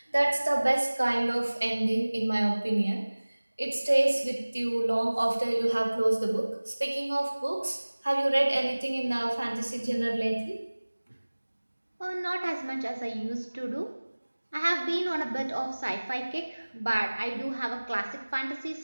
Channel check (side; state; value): both; inverted; correlation -1.00